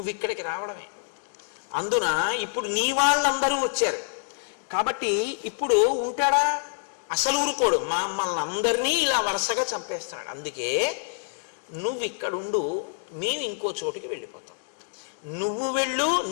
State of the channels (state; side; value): silent; right; digital silence